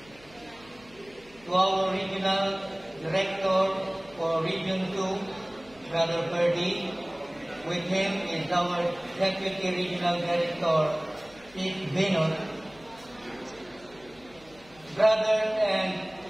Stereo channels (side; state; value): left; noise; hum, 25 dB below the sound